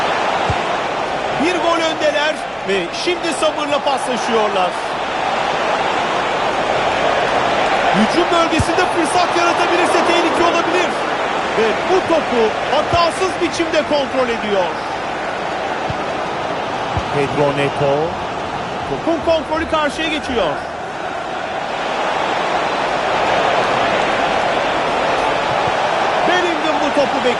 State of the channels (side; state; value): both; identical; correlation 1.00